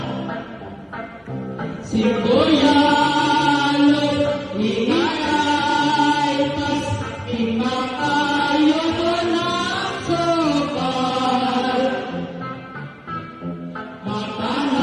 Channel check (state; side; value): identical; both; correlation 1.00